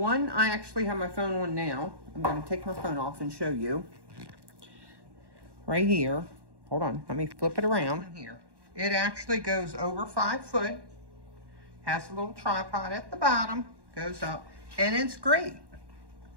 I actually have my phone on now, I'm going to take my phone off and show you. Right here. Hold on, let me flip it around. Here. It actually goes over 5 foot. Has a little tripod at the bottom, goes up, and it's great.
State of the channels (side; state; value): left; late; 1.1 ms